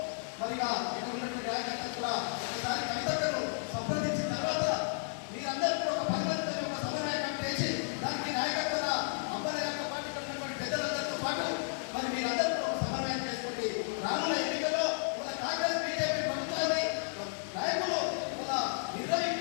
మరి ఇక్కడ ఉన్నటువంటి రాజకీయాలు కూడా ఒకసారి కవితను సంప్రదించిన తర్వాత మీరందరూ కూడా ఒక 10 మందితో ఒక సమన్వయం చేసి దానికి నాయకత్వ అబ్బాయి యొక్క పార్టీ ఉన్నటువంటి పెద్దలందరితో పాటు మరి మీరందరూ కూడా ఒక సమన్వయం చేసుకుంటే రానున్న ఎన్నికల్లో మన కాంగ్రెస్ బీజేపీ ప్రభుత్వాన్ని నాయకులు మన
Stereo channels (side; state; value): right; silent; 56 dB below the other